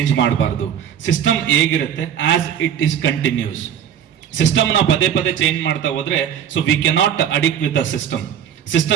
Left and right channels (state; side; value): quieter; left; 9.1 dB